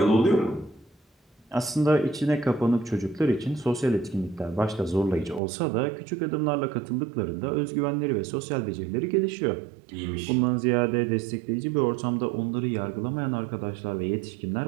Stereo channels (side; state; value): left; drops out; at 5.4 s